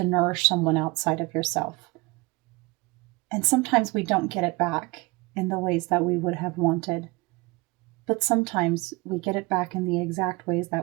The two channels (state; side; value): quieter; left; 25.1 dB